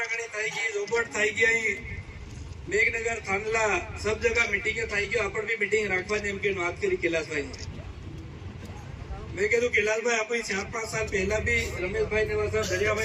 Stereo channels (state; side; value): identical; both; correlation 1.00